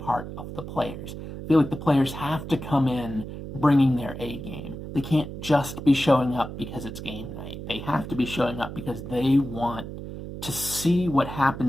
of the players. I feel like the players have to come in bringing their A game. They can't just be showing up because it's game night. They have to be showing up because they want to see what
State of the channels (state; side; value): noise; right; hum, 9 dB below the sound